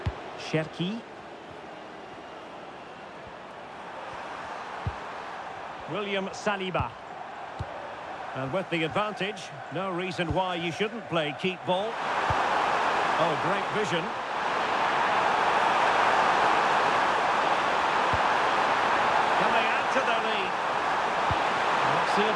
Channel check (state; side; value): identical; both; correlation 1.00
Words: Cherki. William Saliba. And with the advantage, no reason why you shouldn't play keep ball. Oh, great vision. Can they add to their lead? Let's see